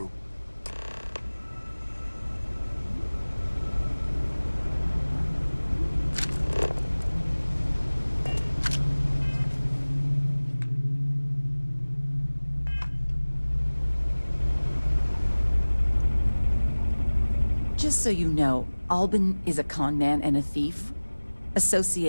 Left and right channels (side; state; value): both; inverted; correlation -1.00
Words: Just so you know, Albin is a con man and a thief.